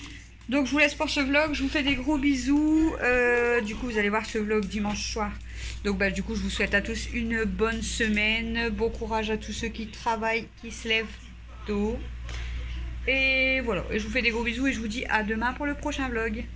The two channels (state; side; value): identical; both; correlation 1.00